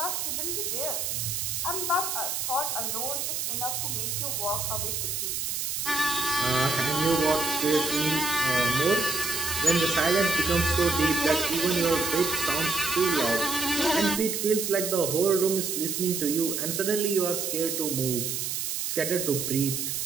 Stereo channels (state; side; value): noise; right; hiss, 2 dB below the sound